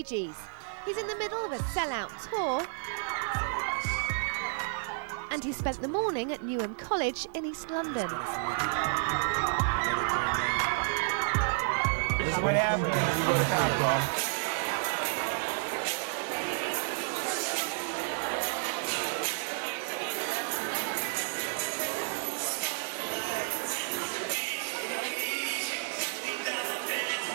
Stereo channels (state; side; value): silent; left; 57 dB below the other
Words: Gees. He's in the middle of a sellout tour, and he spent the morning at Newham College in East London. This is what happens when you go to college.